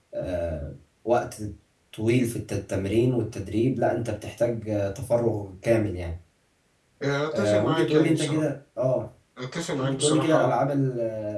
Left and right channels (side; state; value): both; identical; correlation 1.00